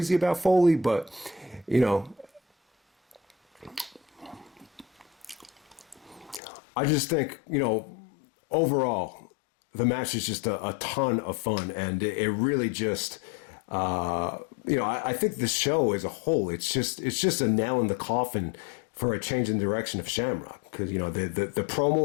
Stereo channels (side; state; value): right; drops out; at 6.4 s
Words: about Foley, but I just think, overall, the match is just a ton of fun, and it really just, I think the show as a whole, it's just a nail in the coffin for a change in direction of Shamrock, because the